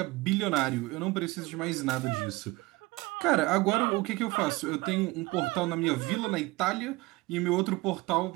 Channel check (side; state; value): left; quieter; 22.3 dB